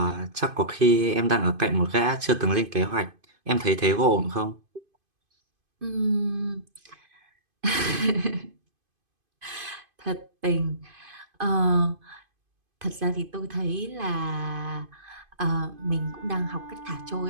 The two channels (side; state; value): left; late; 2.5 ms